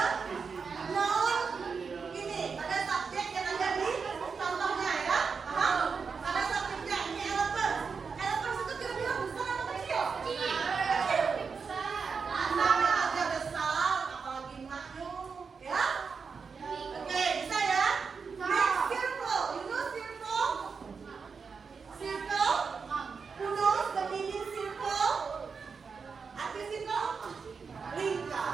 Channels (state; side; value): quieter; left; 5.4 dB